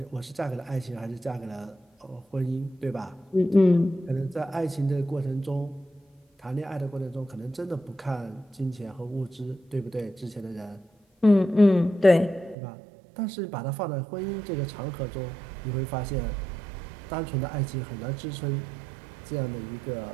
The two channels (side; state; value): left; drops out; at 12.6 s